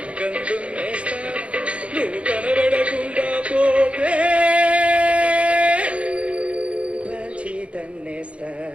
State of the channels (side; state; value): left; late; 0.061 ms